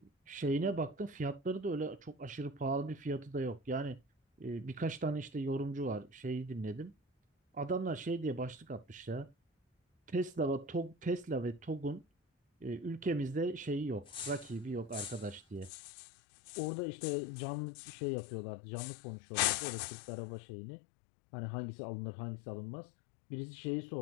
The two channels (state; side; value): drops out; right; at 15.7 s